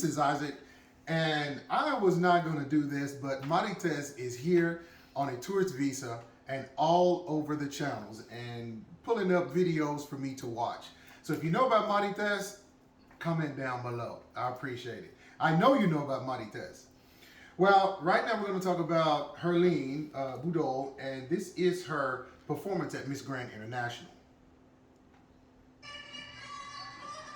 is Isaac, and I was not going to do this, but Marites is here on a tourist visa and all over the channels and pulling up videos for me to watch. So if you know about Marites, comment down below. I appreciate it. I know you know about Marites. Well, right now we're going to talk about Herlene Budol, and this is her performance at Miss Grand International.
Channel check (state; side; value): identical; both; correlation 1.00